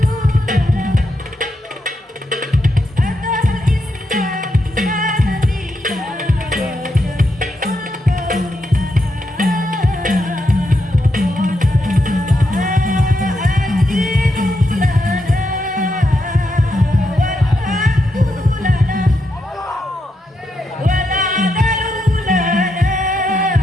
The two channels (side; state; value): both; normal; correlation 0.83